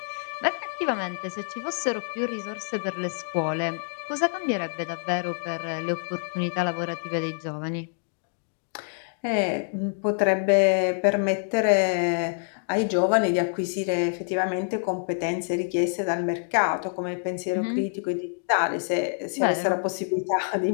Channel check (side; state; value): right; silent; digital silence